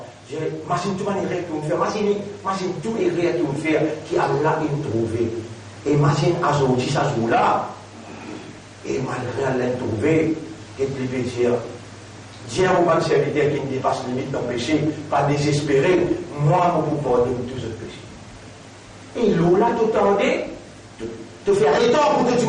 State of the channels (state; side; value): identical; both; correlation 1.00